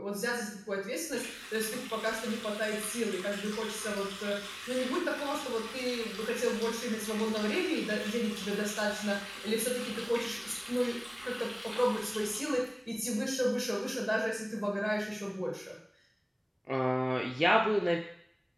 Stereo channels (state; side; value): identical; both; correlation 1.00